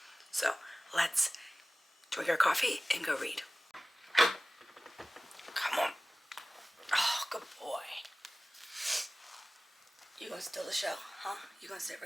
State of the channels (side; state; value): both; normal; correlation 0.97